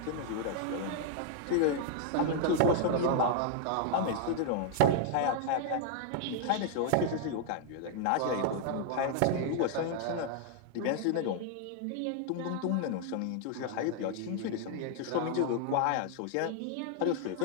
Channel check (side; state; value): both; different; correlation 0.00